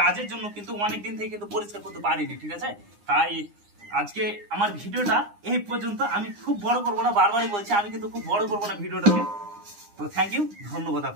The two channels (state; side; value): late; left; 9.8 ms